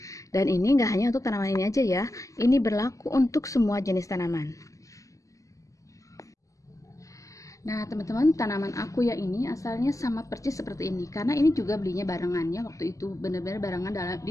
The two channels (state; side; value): late; right; 0.16 ms